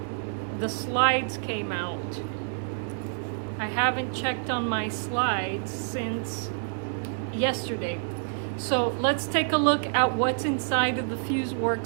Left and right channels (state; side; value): silent; left; digital silence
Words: the slides came out. I haven't checked on my slides since yesterday. So let's take a look at what's inside of the